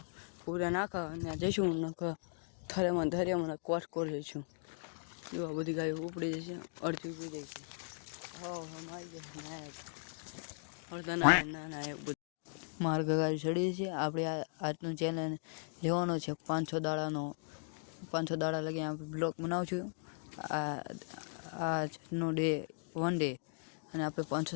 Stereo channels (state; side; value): silent; right; digital silence